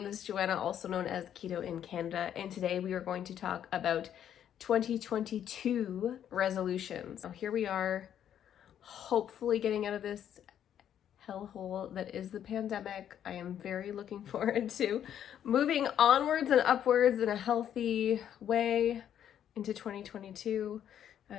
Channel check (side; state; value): right; quieter; 9.9 dB